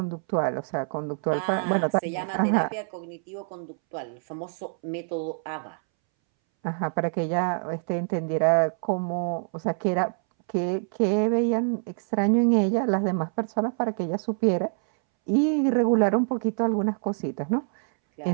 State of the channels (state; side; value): silent; left; 61 dB below the other